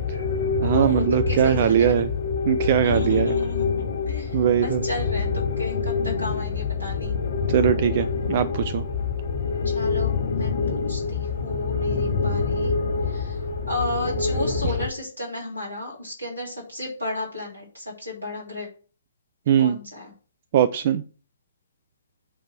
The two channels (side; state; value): both; inverted; correlation -0.50